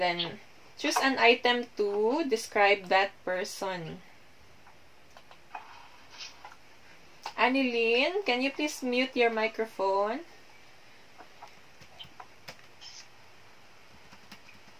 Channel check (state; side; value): identical; both; correlation 1.00